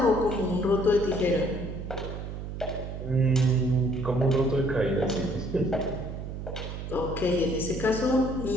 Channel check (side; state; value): right; noise; hum, 7 dB below the sound